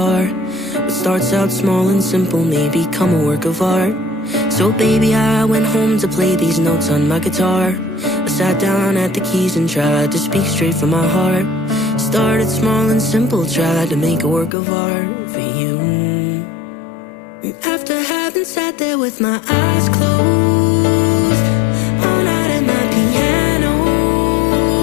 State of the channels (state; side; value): drops out; right; at 14.6 s